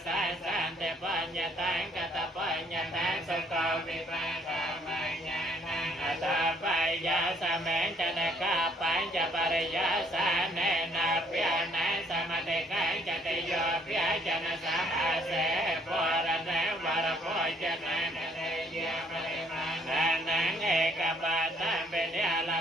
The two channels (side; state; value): both; normal; correlation 0.64